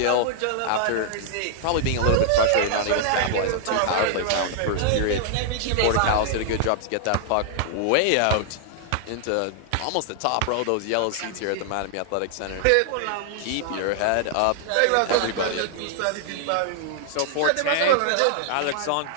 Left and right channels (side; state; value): both; different; correlation 0.00